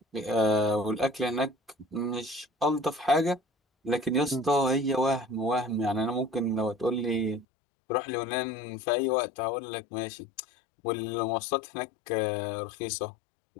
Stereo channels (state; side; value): drops out; right; at 7.5 s